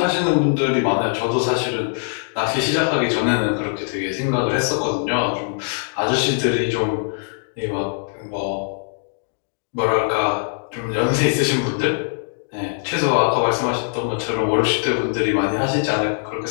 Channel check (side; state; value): right; silent; digital silence